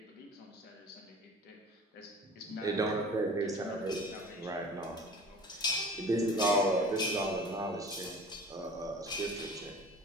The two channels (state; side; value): normal; both; correlation 0.43